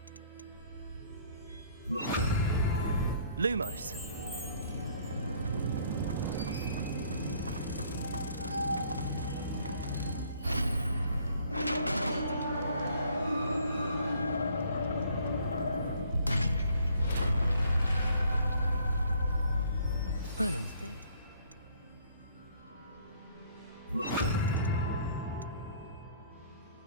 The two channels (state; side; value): inverted; both; correlation -0.60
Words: Lumos. Merlin's big.